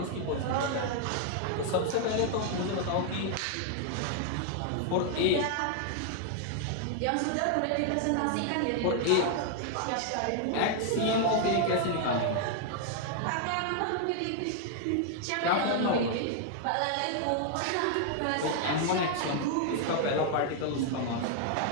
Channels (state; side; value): different; both; correlation 0.00